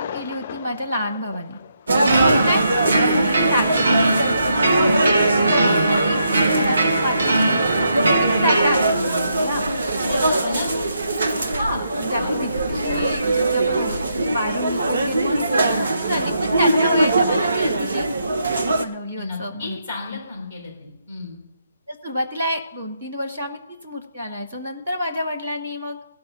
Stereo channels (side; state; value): both; inverted; correlation -0.78